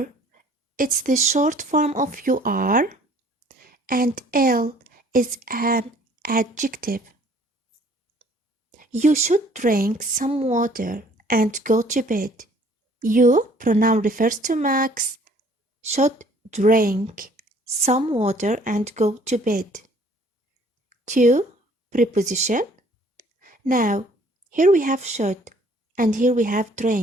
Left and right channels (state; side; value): normal; both; correlation 0.57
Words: it's the short form of you are. And ill is an adjective. You should drink some water and go to bed. You, pronoun refers to Max, should drink some water and go to bed. To, preposition. Now, here we have should and here we have